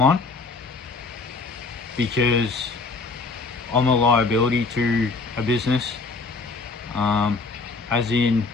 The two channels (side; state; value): right; quieter; 4.0 dB